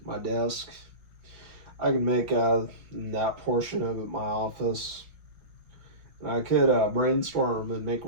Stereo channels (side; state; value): left; late; 5.2 ms